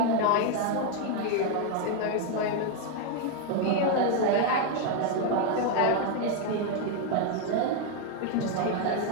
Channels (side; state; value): both; different; correlation 0.01